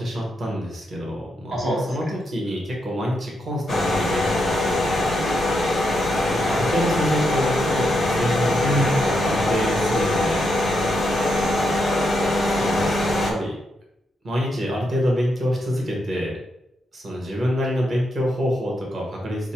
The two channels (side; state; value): both; normal; correlation 0.82